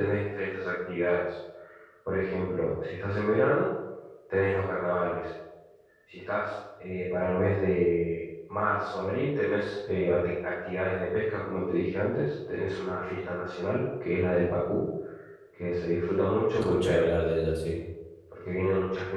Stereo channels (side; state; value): both; identical; correlation 1.00